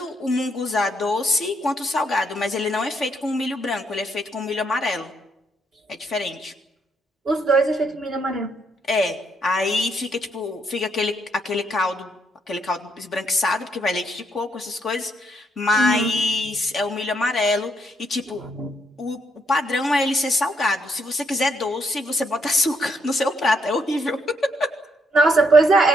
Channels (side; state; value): both; normal; correlation 0.74